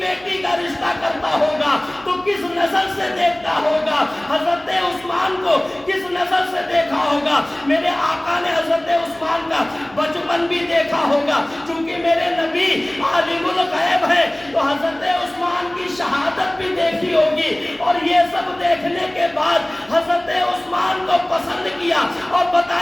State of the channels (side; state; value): left; noise; hum, 28 dB below the sound